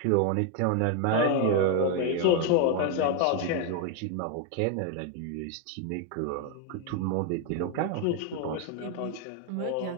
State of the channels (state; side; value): different; both; correlation 0.01